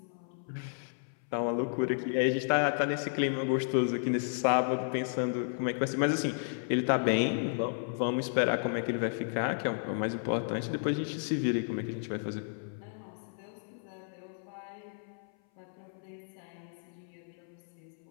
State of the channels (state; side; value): silent; right; 56 dB below the other